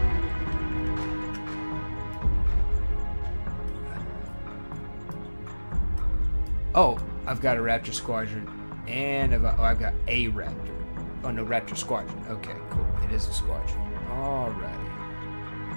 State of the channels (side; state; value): both; inverted; correlation -1.00